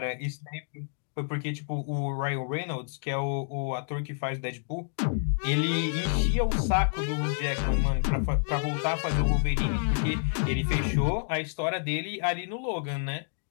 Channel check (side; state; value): right; silent; digital silence